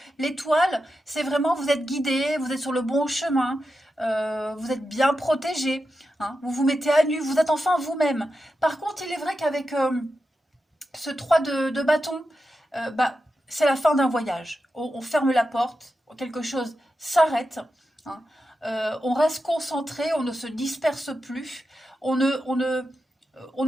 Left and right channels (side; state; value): both; normal; correlation 0.90